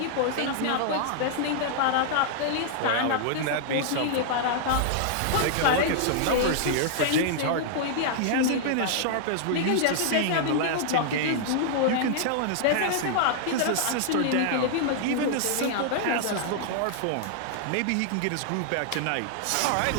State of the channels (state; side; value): different; both; correlation -0.01